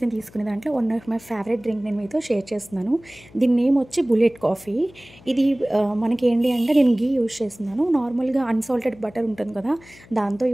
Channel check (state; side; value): noise; left; hum, 24 dB below the sound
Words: నేను తీసుకునే దాంట్లో one of my favourite drink నేను మీతో షేర్ చేస్తున్నాను. దీని నేమ్ వచ్చి బుల్లెట్ కాఫీ. ఇది మనకి ఏంటి అంటే నేను గీ యూజ్ చేస్తున్నాను. నార్మల్గా అన్సాల్టెడ్ బటర్ ఉంటుంది కదా, దాంతో